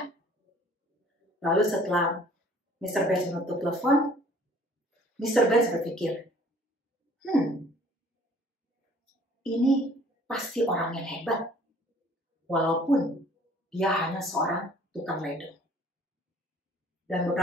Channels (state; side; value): normal; both; correlation 0.55